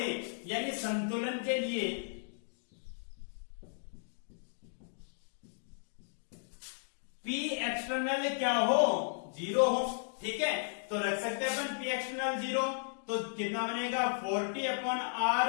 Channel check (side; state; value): right; silent; digital silence